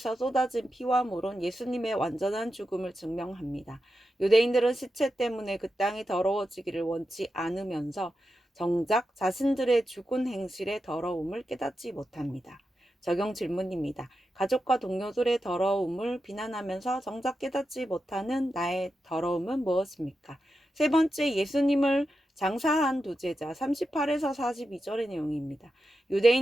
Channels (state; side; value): normal; both; correlation 0.89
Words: 쏟아진 피와 물은 예수님의 완전한 죽음을 증명합니다. 유대인들은 시체 때문에 그 땅이 더러워지기를 원치 않으면서 정작 자신들의 죽은 행실의 더러움을 깨닫지 못합니다. 적용 질문입니다. 가족과 동료들의 더러움을 비난하면서 정작 깨닫지 못하는 나의 더러움은 무엇입니까? 세 번째, 예수님을 장사한 두 제자 38에서 42절의 내용입니다.